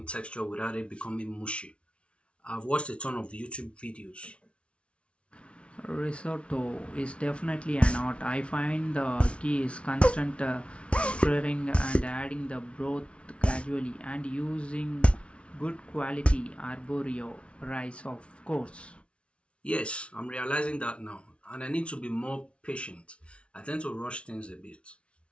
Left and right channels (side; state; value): right; late; 0.060 ms